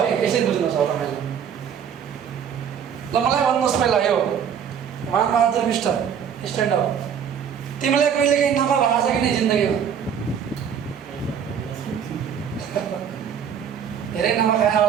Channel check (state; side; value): quieter; left; 8.0 dB